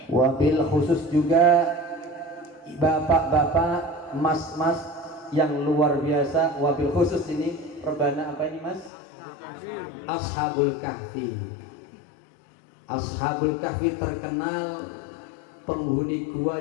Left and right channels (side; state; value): right; drops out; at 8.9 s